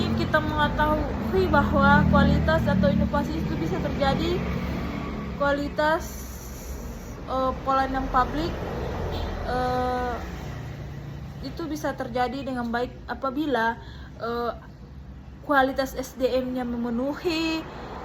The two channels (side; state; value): both; identical; correlation 1.00